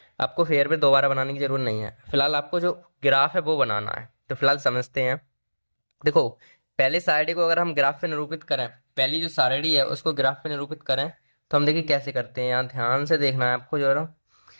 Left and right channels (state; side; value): inverted; both; correlation -1.00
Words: आपको फेयर पे दोबारा बनाने की जरूरत नहीं है। फिलहाल आपको जो ग्राफ है वो बनाना है, तो फिलहाल समझते हैं। देखो पहले सारणी को अगर हम ग्राफ पे निरूपित करें, पहली जो सारणी है उसको ग्राफ पे निरूपित करें, तो हम देखिए कैसे करते हैं। यहाँ ध्यान से देखना है आपको जरा।